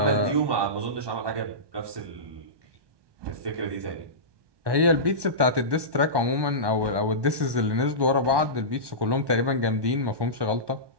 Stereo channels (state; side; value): late; left; 1.2 ms